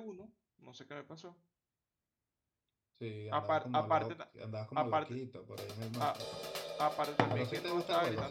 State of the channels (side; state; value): both; identical; correlation 1.00